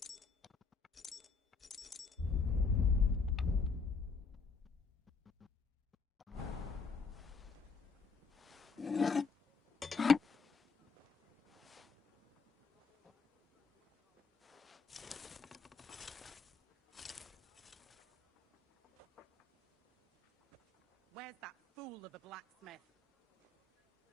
Where's that fool of a blacksmith?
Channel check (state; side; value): quieter; right; 4.7 dB